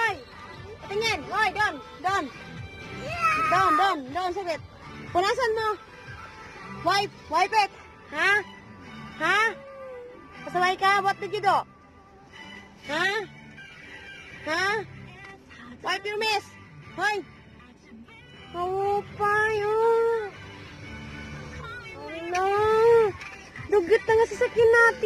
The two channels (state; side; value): identical; both; correlation 1.00